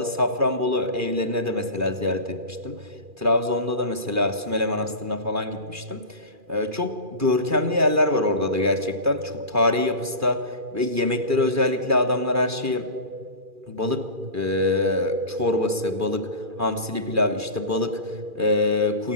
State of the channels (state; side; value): late; left; 2.4 ms